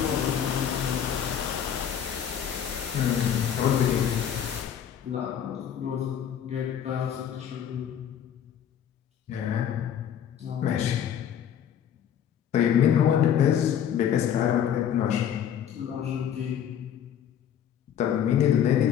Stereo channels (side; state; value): right; quieter; 9.2 dB